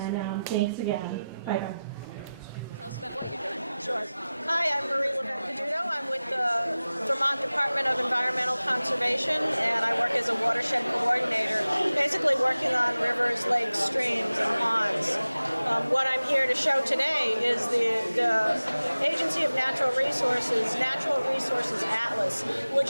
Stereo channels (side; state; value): both; inverted; correlation -0.96